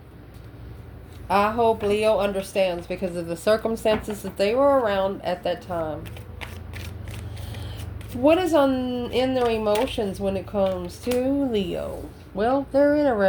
I hope Leo understands because of the circumstances that they were around at that time. What is in their emotions when it comes to Leo? Well, they're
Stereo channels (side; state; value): both; identical; correlation 1.00